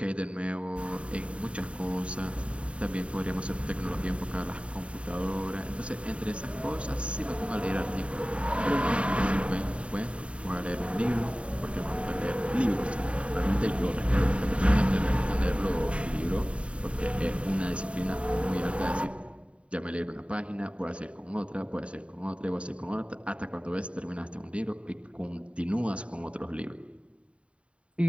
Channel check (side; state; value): left; late; 0.060 ms